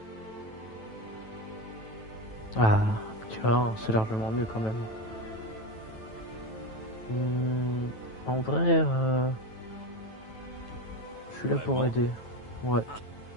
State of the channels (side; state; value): right; late; 9.2 ms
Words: Ah, tu vois, c'est largement mieux quand même. En vrai, je suis là pour Vraiment? aider. Ouais.